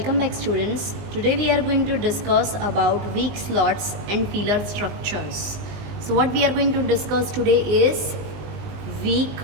back students. Today we are going to discuss about weak slots and filler structures. So what we are going to discuss today is weak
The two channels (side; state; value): left; late; 20 ms